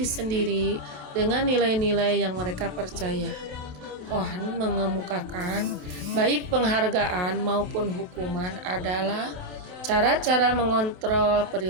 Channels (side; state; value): left; late; 27 ms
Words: sendiri dengan nilai-nilai yang mereka percaya. Cohen mengemukakan baik penghargaan maupun hukuman adalah cara-cara mengontrol